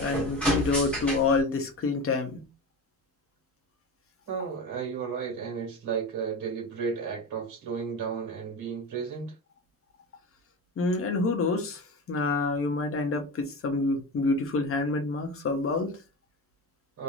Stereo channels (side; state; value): both; normal; correlation 0.26